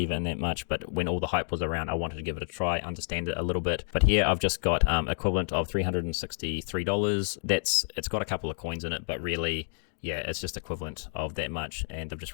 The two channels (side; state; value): right; silent; digital silence